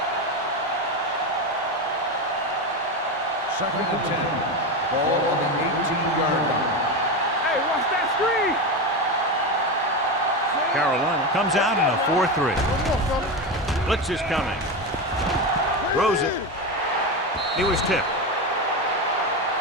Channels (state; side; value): normal; both; correlation 0.17